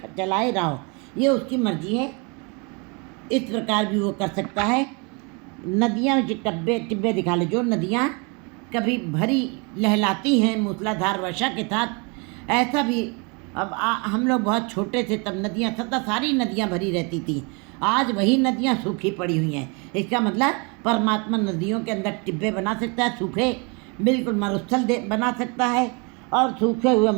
चलाए रहो, ये उसकी मर्जी है। इस प्रकार भी वो कर सकता है। नदियाँ टिब्बे दिखा ले, जो नदियाँ कभी भरी लहलाती हैं मूसलाधार वर्षा के साथ, ऐसा भी अब हम लोग बहुत छोटे थे तब नदियाँ सारी नदियाँ भरी रहती थी, आज वही नदियाँ सूखी पड़ी हुई हैं। इसका मतलब परमात्मा नदियों के अंदर टिब्बे बना सकता है, सूखे बिल्कुल मरुस्थल बना सकता है, और सूखे हुए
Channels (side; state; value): left; quieter; 31.9 dB